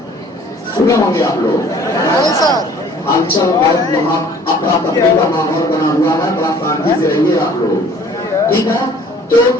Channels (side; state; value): both; normal; correlation 0.53